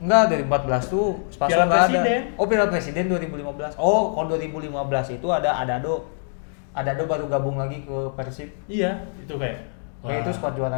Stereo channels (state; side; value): silent; right; 63 dB below the other